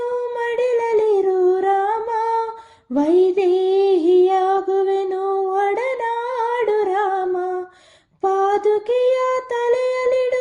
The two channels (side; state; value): both; identical; correlation 1.00